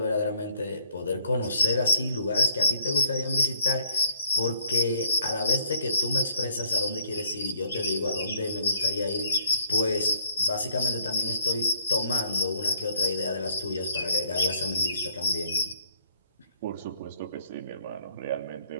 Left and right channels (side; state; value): both; inverted; correlation -0.65